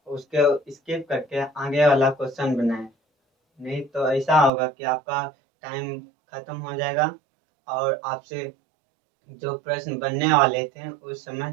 उसके स्किप करके आगे वाला क्वेश्चन बनाएं। नहीं तो ऐसा होगा कि आपका टाइम खत्म हो जाएगा और आपसे जो प्रश्न बनने वाले थे उस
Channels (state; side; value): drops out; left; at 4.5 s